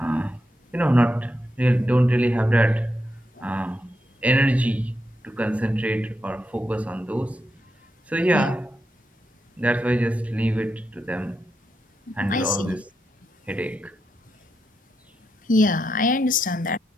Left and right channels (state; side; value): normal; both; correlation 0.84